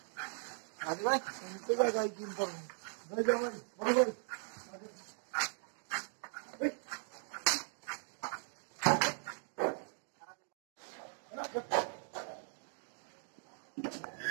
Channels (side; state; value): left; silent; 52 dB below the other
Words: आदि भाई इनके क्या गाय की इनका भाई जाओ भाई भाई